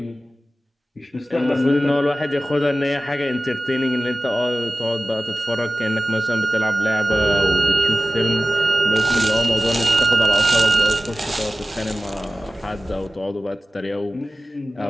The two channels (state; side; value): normal; both; correlation 0.95